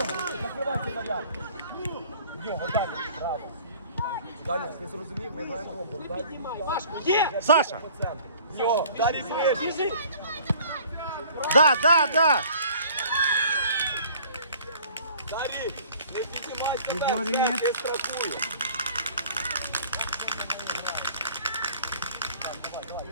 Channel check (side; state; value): both; inverted; correlation -0.50